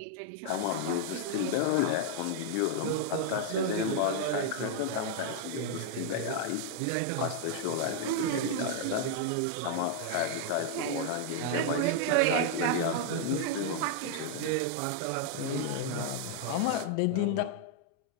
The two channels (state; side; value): different; both; correlation 0.00